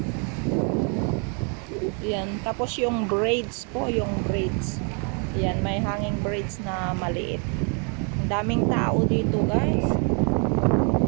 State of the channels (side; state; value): left; quieter; 38.0 dB